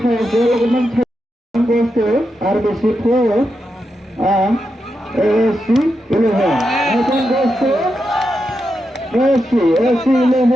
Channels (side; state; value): both; normal; correlation 0.86